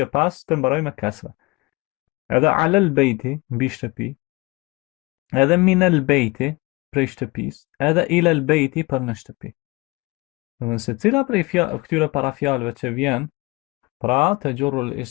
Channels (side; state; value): right; quieter; 24.1 dB